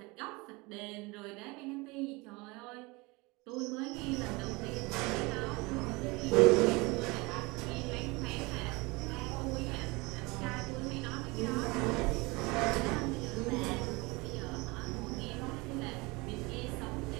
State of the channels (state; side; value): quieter; left; 25.0 dB